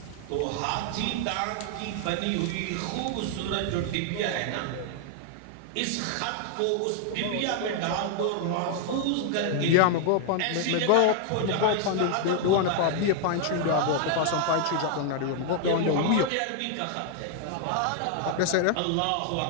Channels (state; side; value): different; both; correlation 0.00